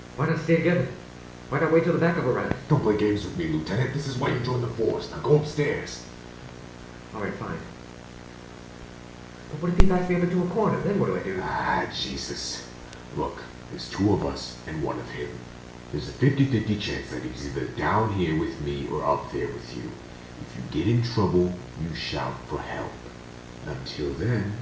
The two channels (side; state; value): both; identical; correlation 1.00